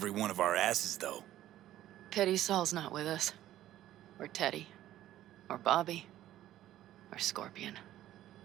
one of our asses, though. Pity Saul's not with us. Or Teddy. Or Bobby. Or Scorpion.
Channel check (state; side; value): quieter; left; 13.4 dB